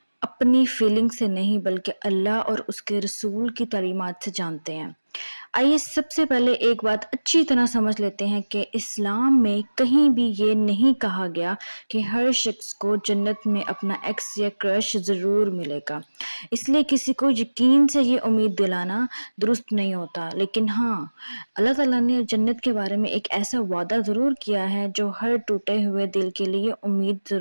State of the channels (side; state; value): both; inverted; correlation -1.00